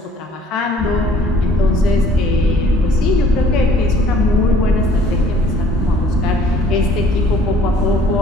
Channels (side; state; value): both; normal; correlation 0.57